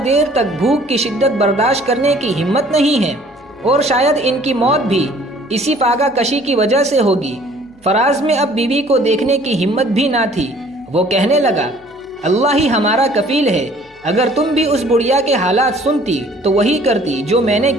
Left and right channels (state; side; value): noise; left; hum, 30 dB below the sound